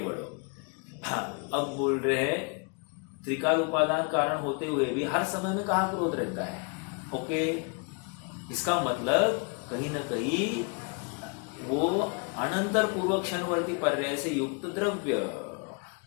हाँ, अब बोल रहे हैं त्रिकाल उपादान कारण होते हुए भी हर समय में कहाँ क्रोध रहता है? ओके, इसका मतलब कहीं ना कहीं वो अनंतर पूर्वक क्षणवर्ती पर्याय से युक्त द्रव्य।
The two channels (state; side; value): quieter; right; 36.3 dB